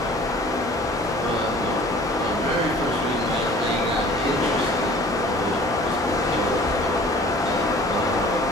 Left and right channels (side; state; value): both; normal; correlation 0.48